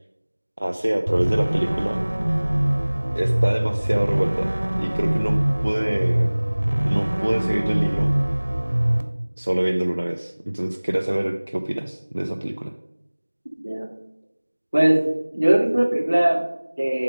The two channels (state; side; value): inverted; both; correlation -1.00